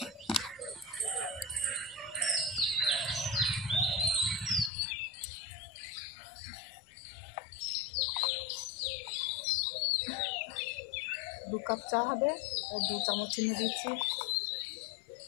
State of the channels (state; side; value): drops out; right; at 4.7 s